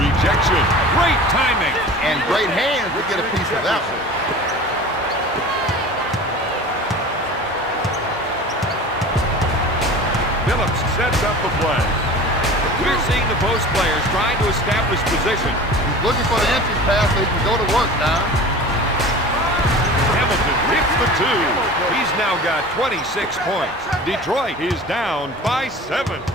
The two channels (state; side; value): normal; both; correlation 0.38